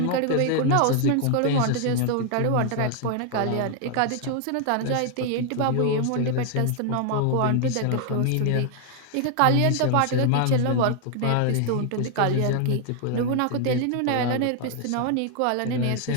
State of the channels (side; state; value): both; different; correlation 0.00